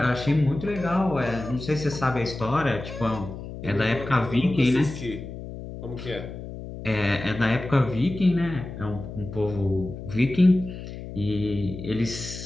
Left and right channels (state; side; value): noise; left; hum, 10 dB below the sound